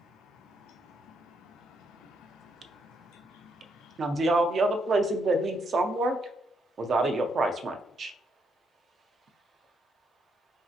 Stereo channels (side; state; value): both; normal; correlation 0.76